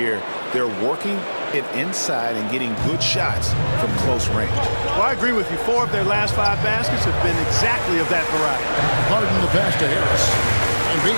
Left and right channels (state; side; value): inverted; both; correlation -1.00